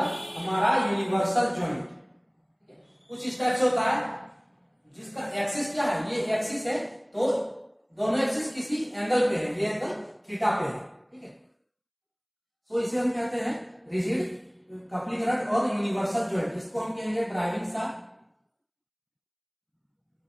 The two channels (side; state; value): both; identical; correlation 1.00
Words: हमारा यूनिवर्सल जॉइंट, कुछ इस टाइप से होता है, जिसका एक्सिस क्या है? ये एक्सिस है, तो दोनों एक्सिस किसी एंगल पे है, ये एंगल थीटा पे है, ठीक है। सो इसे हम कहते हैं रिजिड कपलिंग रड और यूनिवर्सल जॉइंट। इसको हम कहेंगे ड्राइविंग शाफ्ट,